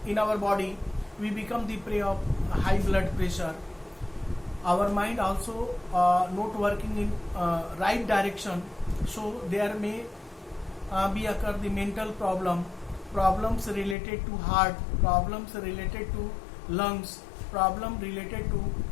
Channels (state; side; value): drops out; right; at 14.0 s